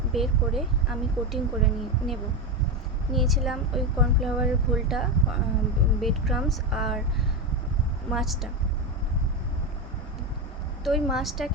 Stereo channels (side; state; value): both; normal; correlation 0.13